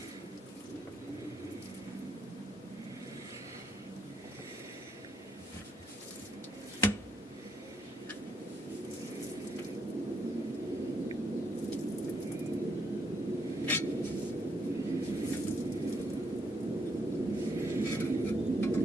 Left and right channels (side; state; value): both; normal; correlation 0.75